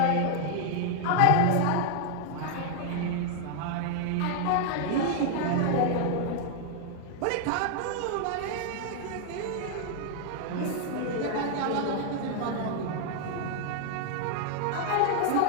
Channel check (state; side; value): different; both; correlation 0.00